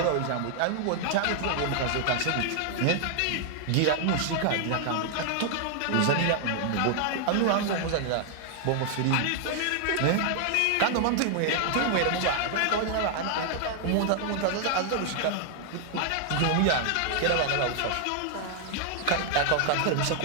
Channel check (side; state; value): both; different; correlation 0.00